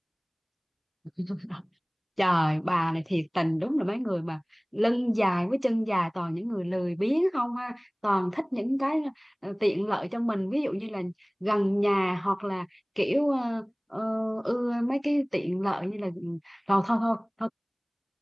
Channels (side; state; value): both; identical; correlation 1.00